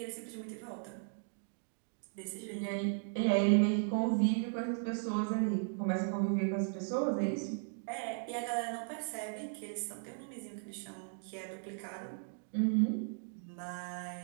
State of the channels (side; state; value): left; silent; digital silence